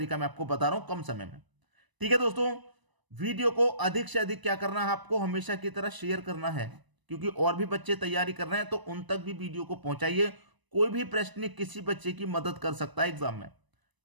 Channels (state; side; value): late; left; 1.0 ms